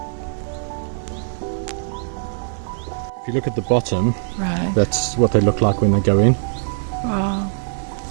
If you look at the bottom, Right. that's what they look like when they go in. Wow.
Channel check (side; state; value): left; silent; 65 dB below the other